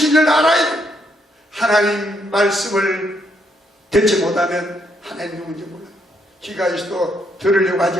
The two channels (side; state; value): both; normal; correlation 0.75